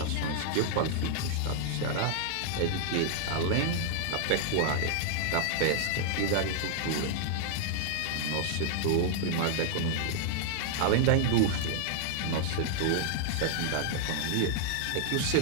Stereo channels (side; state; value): both; different; correlation -0.01